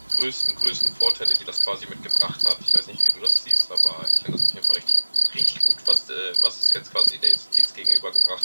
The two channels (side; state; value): both; inverted; correlation -1.00